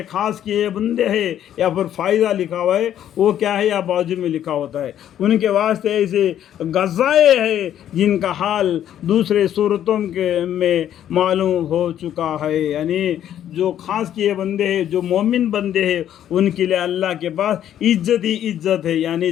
خاص کیے بندے ہیں، یا پھر فائدہ لکھا ہوا ہے وہ کیا ہے یا بازو میں لکھا ہوتا ہے، ان کے واسطے ایسے غزائے ہیں جن کا حال دوسرے صورتوں میں معلوم ہو چکا ہے. یعنی جو خاص کیے بندے ہیں، جو مومن بندے ہیں، ان کے لیے اللہ کے پاس عزت ہی عزت ہے، یعنی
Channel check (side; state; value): right; quieter; 10.8 dB